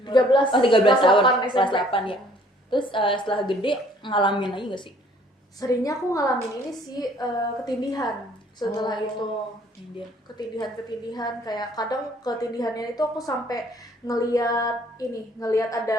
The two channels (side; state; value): both; normal; correlation 0.59